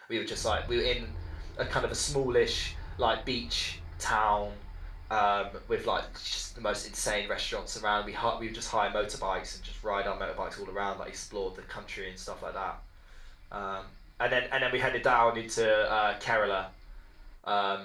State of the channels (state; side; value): identical; both; correlation 1.00